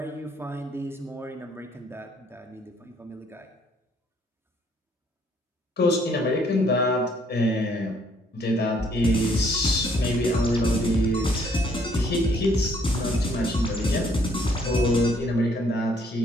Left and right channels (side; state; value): both; normal; correlation 0.65